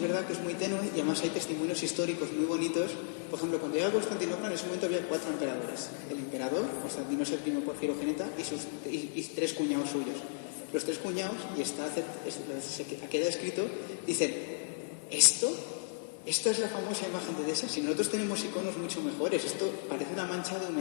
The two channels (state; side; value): silent; right; digital silence